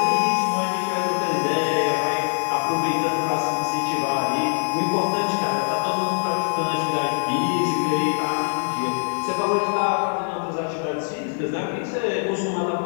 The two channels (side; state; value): right; silent; 59 dB below the other